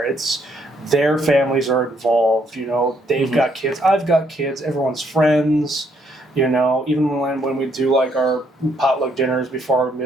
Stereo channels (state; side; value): normal; both; correlation 0.71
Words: it's their families are involved, you know, they've got kids, I've got kids, everyone's friends, you know, even when we do, like, our potluck dinners before our